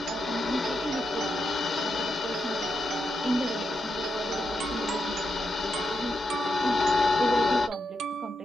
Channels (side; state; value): both; normal; correlation 0.85